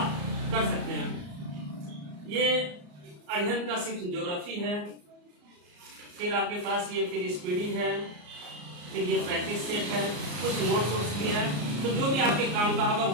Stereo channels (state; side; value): late; left; 34 ms